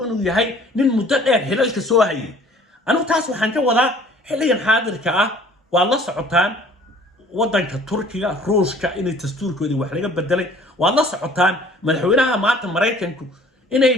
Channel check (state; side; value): normal; both; correlation 0.52